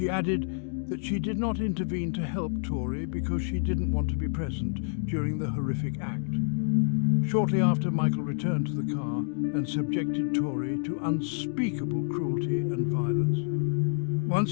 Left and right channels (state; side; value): silent; right; digital silence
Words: added that she did not intervene to help Torey because she didn't want to be present during the horrific act. Shortly after, Michael returned to the car and subjected Torey to unspeakable cruelty and violence.